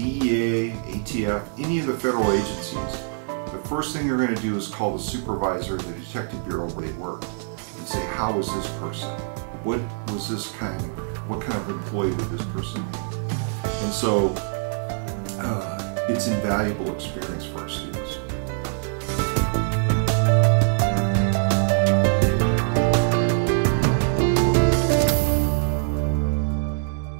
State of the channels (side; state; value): left; silent; digital silence